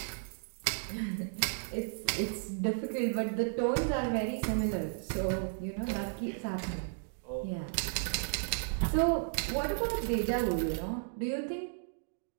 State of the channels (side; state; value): left; silent; digital silence